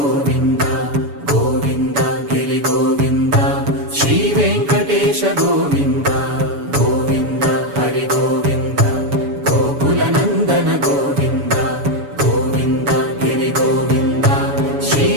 గోవింద గిరి గోవింద శ్రీ వెంకటేశ గోవింద గోవింద హరి గోవింద గోకులనందన గోవింద గోవింద గిరి గోవింద శ్రీ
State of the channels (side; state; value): left; late; 7.0 ms